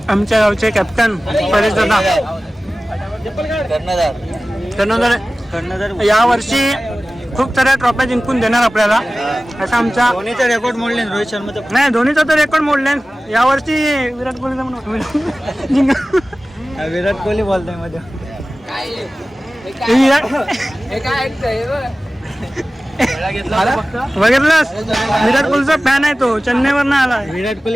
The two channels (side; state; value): both; normal; correlation 0.97